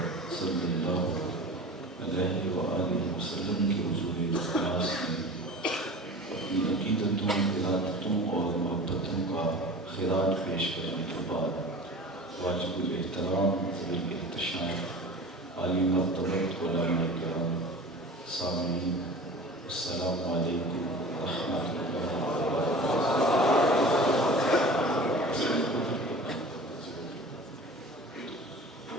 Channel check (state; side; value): normal; both; correlation 0.38